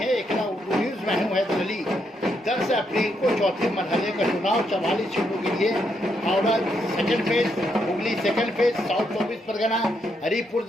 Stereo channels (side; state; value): both; normal; correlation 0.78